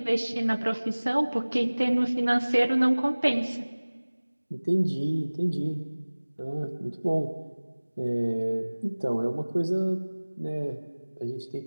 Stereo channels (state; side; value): inverted; both; correlation -1.00